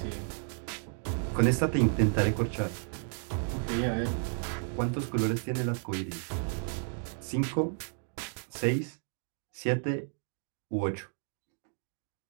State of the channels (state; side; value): silent; left; 56 dB below the other